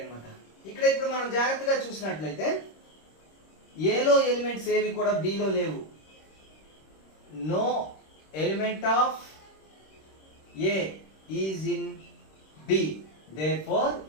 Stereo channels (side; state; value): right; late; 26 ms